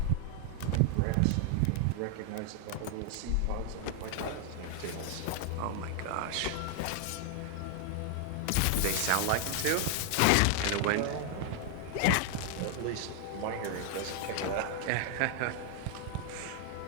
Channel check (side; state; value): both; different; correlation 0.00